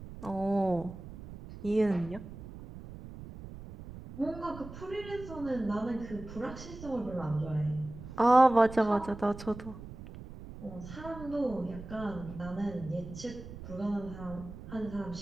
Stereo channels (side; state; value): right; noise; rumble, 13 dB below the sound